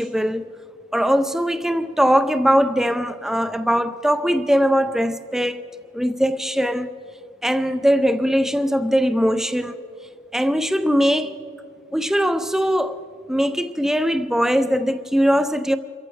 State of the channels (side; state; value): both; normal; correlation 0.93